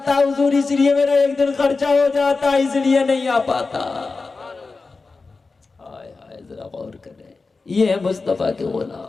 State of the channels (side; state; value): right; quieter; 4.0 dB